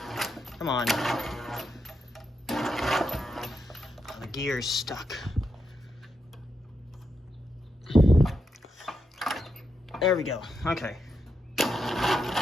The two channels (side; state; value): both; normal; correlation 0.84